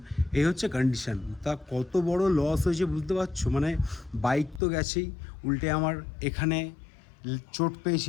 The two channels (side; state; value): right; drops out; at 4.6 s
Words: এই হচ্ছে কন্ডিশান। তা কত বড় লস হয়েছে বুঝতে পারছো? মানে বাইক তো গেছেই, উল্টে আমার এখানে চোট পেয়েছি।